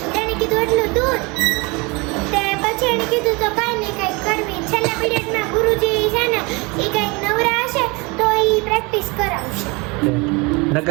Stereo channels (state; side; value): quieter; left; 27.1 dB